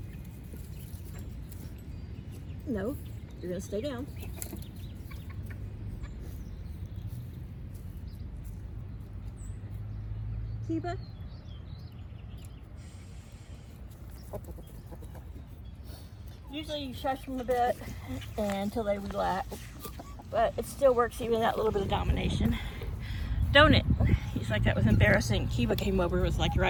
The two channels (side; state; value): both; identical; correlation 1.00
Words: No, you're going to stay down. Kiba. Usually you shush them a bit until they relax. But it still works even that little bit of domination. Don't it? He's like, that was embarrassing. Kiba came over, was like